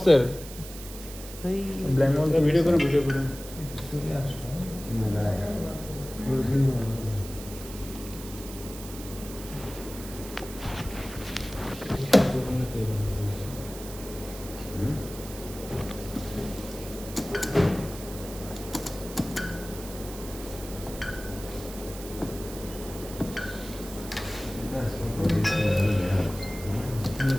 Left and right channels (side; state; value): right; noise; hiss, 13 dB below the sound